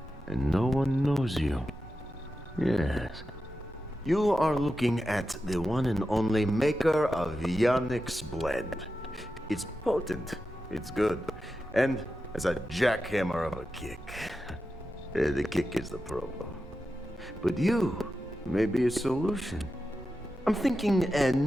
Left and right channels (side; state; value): both; normal; correlation 0.91